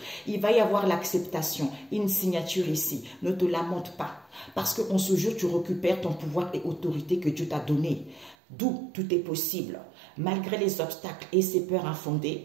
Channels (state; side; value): drops out; left; at 8.3 s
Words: Il va y avoir l'acceptation, une signature ici. Ne te lamente pas parce qu'en ce jour, tu récupères ton pouvoir et autorité que Dieu t'a donné. D'où tout est possible. Malgré les obstacles et ces peurs